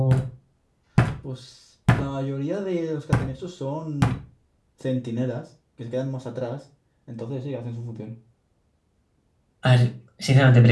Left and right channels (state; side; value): identical; both; correlation 1.00